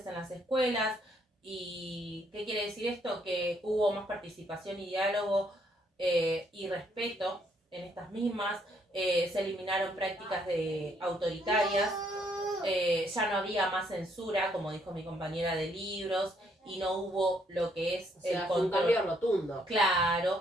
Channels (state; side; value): normal; both; correlation 0.70